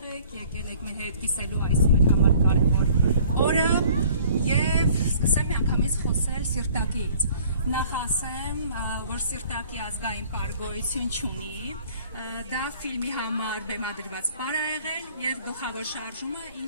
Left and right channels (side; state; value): both; inverted; correlation -0.53